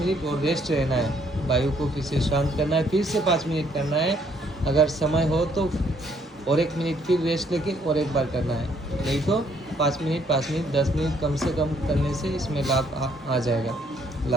और रेस्ट रहना है, वायु को फिर से शांत करना है, फिर से 5 मिनट करना है। अगर समय हो तो और 1 मिनट फिर रेस्ट लेके और एक बार करना है, नहीं तो 5 मिनट 10 मिनट कम से कम करने से इसमें लाभ आ जाएगा,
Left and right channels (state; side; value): normal; both; correlation 0.67